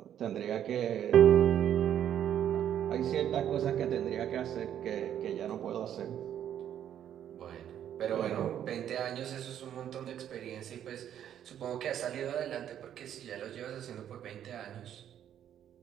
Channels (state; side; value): quieter; left; 10.2 dB